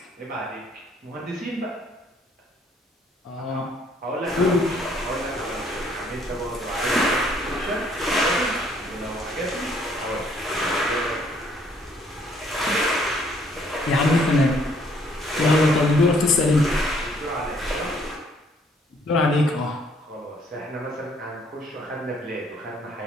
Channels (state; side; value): normal; both; correlation 0.64